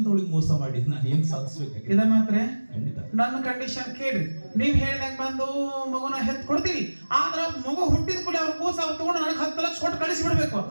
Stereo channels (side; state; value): both; inverted; correlation -1.00